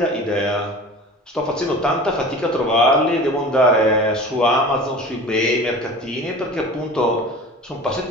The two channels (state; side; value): normal; both; correlation 0.38